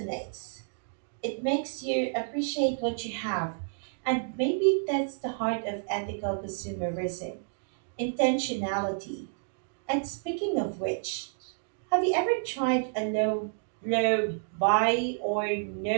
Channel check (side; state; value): left; silent; digital silence